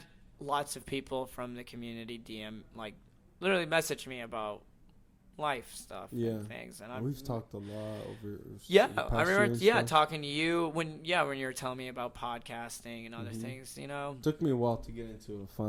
lots of people from the community DM, like, literally message me about life stuff Yeah. and things. And We've talked a lot over. Yeah, the past I year remember. and Yeah, stuff. talking to you when you were telling me about podcasting and other Mhm. things. You know. Took me a while to get into it.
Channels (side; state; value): both; identical; correlation 1.00